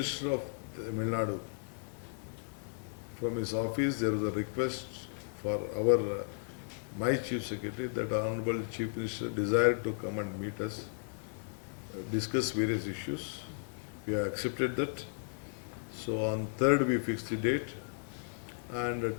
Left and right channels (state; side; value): silent; right; digital silence